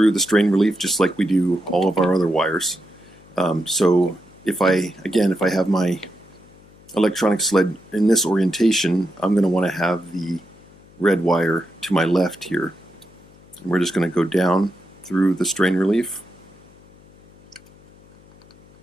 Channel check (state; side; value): noise; left; hum, 26 dB below the sound